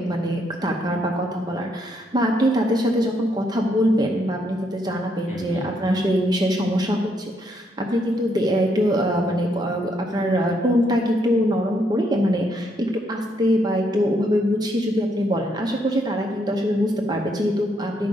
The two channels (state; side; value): normal; both; correlation 0.74